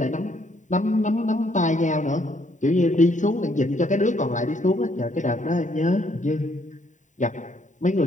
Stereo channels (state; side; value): late; right; 0.36 ms